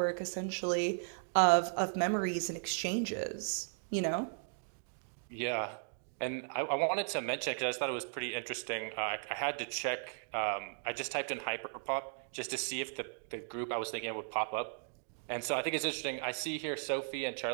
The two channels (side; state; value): left; silent; digital silence